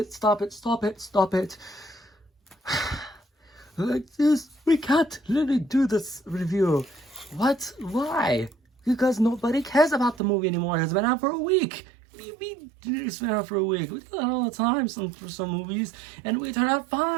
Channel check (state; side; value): drops out; left; at 10.2 s